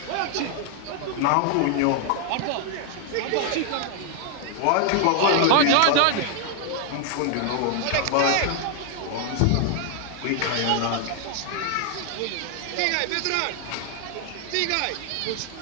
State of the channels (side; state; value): both; different; correlation 0.00